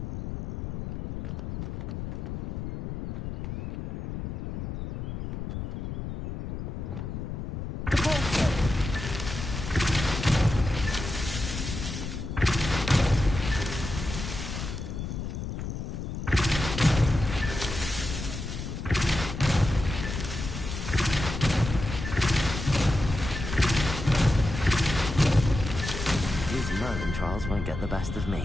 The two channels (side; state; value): left; noise; rumble, 5 dB below the sound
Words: Merlin trials won't get the best of